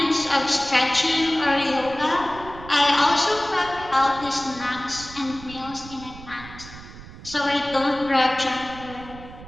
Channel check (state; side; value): noise; right; rumble, 16 dB below the sound